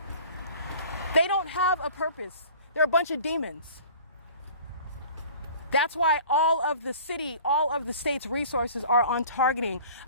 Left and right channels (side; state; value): both; inverted; correlation -0.46